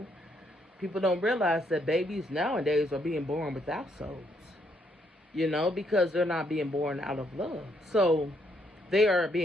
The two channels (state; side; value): normal; both; correlation 0.73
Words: People don't realize that babies nowadays are being born without souls, because they're not being born out of love. So they are